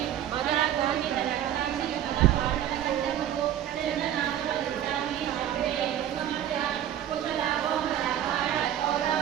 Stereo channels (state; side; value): quieter; left; 11.1 dB